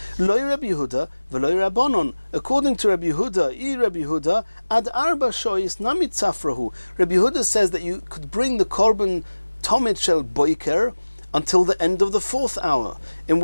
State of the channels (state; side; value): inverted; both; correlation -1.00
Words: Loi Rabbi Yehuda v'loi Rabbanon. According to Rabbi Yehuda, Rabbi Yehuda, ad arba shois namit tzafrahu. Rabbi Yehuda says that you could bring the korban tomid shel boiker until the end of the 4th hour. In